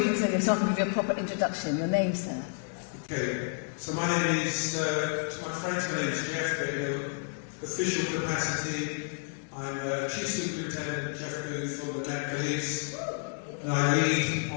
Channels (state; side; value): silent; right; 58 dB below the other